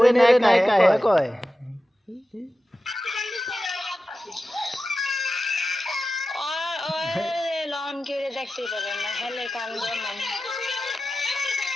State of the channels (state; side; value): normal; both; correlation 0.93